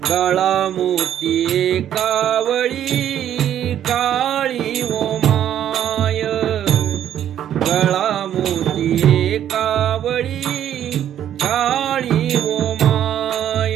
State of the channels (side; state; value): left; quieter; 10.6 dB